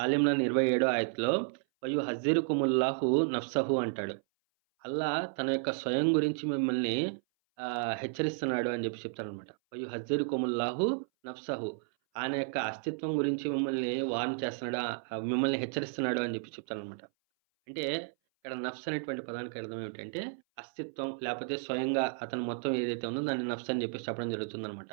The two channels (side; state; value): left; silent; 56 dB below the other